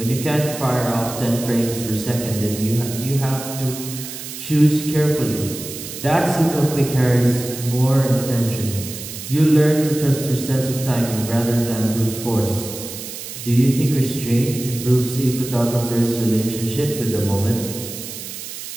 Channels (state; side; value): noise; right; hiss, 10 dB below the sound